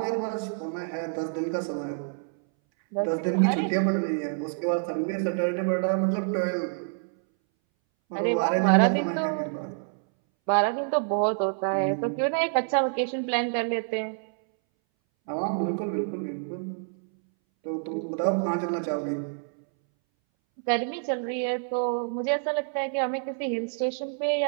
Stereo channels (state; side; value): silent; left; 60 dB below the other